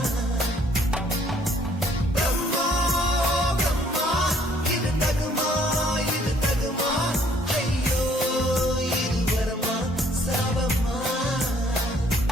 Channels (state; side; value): normal; both; correlation 0.62